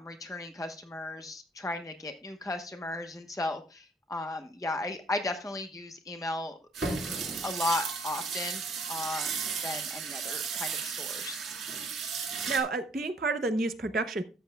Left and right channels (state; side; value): normal; both; correlation 0.61